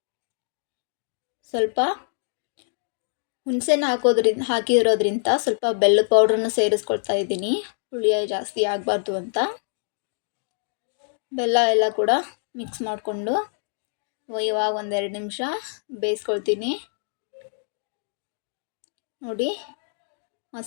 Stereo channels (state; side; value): silent; right; digital silence